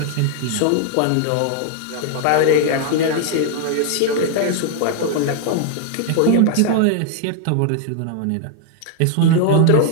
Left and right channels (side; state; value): both; different; correlation 0.00